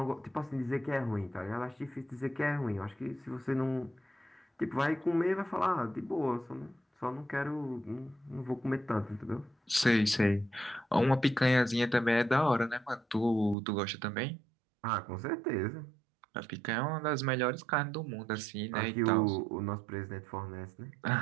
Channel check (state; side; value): drops out; left; at 13.6 s